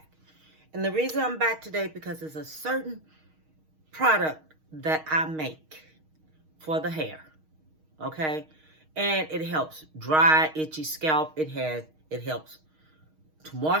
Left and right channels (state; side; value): late; left; 6.4 ms